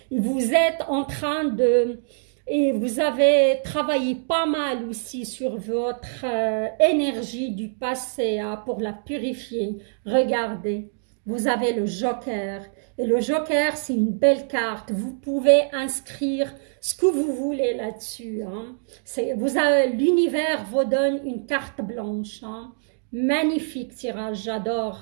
Et vous êtes en train de... Et vous avez travaillé pas mal aussi sur votre énergie du passé hein, pour la purifier. Regardez, vous avez le joker. Et le joker, c'est une belle carte. Vous pouvez inscrire ce que vous voulez là-dessus. Hein. L'univers vous donne une carte blanche. Hein. Magnifique tirage,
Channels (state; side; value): silent; left; digital silence